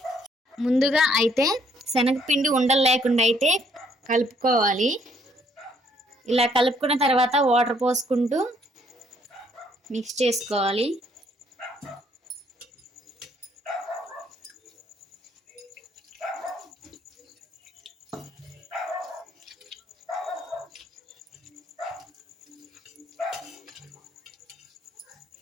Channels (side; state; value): both; normal; correlation 0.66